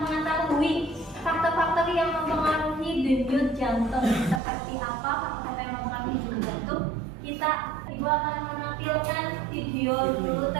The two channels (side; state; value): left; drops out; at 4.4 s